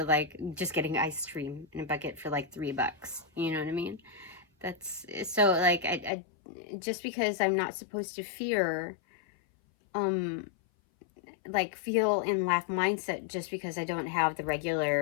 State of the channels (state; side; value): drops out; right; at 6.1 s